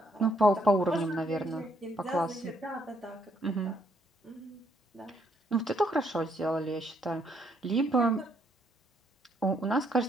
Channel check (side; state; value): both; normal; correlation 0.71